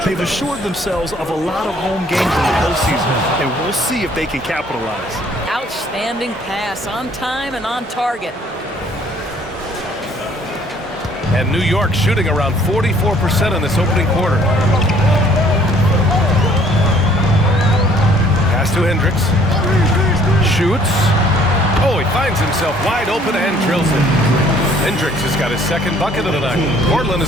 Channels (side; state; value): both; normal; correlation 0.59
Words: They've assured themselves of a lot of home games in the postseason, and we'll see if they can capitalize. Outstanding pass, on time and on target. And New York shooting around 44% in this opening quarter. Pass to Hendricks. Shoots. Oh, he finds himself wide open and drills it. Hendricks has got his second bucket of the night. Portland